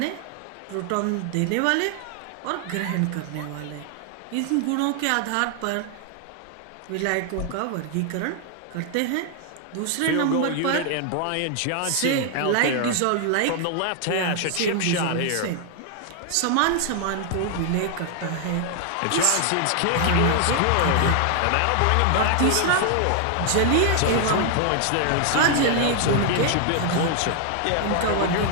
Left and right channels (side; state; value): both; different; correlation 0.00